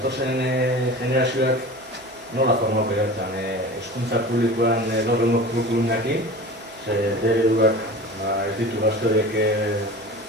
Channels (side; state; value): both; normal; correlation 0.36